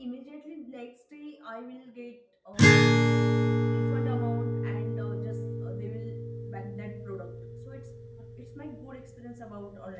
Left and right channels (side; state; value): both; identical; correlation 1.00